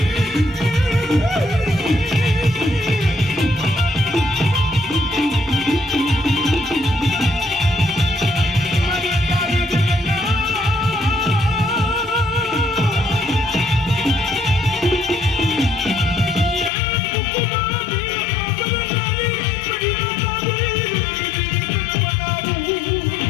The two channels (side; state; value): right; drops out; at 16.7 s